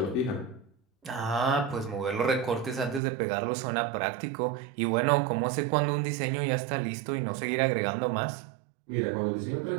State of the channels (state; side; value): drops out; left; at 3.0 s